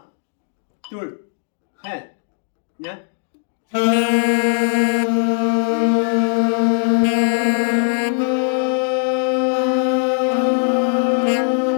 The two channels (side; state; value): right; silent; 66 dB below the other